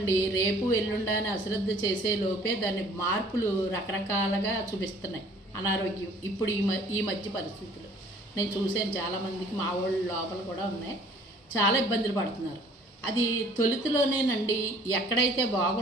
రేపు ఎల్లుండ అని అశ్రద్ధ చేసే లోపే దాని మార్పులు రకరకాలుగా చూపిస్తున్నాయి. అనారోగ్యం ఇప్పుడు ఈ మధ్య పరిస్థితులు నేను చూసాను. చాలామందికి మా వాళ్ళు లోపల కూడా ఉన్నాయి, చాలా ఇబ్బందులు పడుతున్నారు. అది తొలుతిలోనేనండి. ఎక్కడైతే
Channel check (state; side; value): normal; both; correlation 0.55